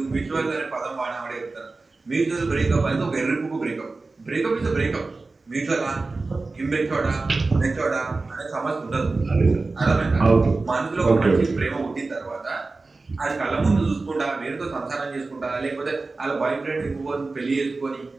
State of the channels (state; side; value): quieter; left; 3.6 dB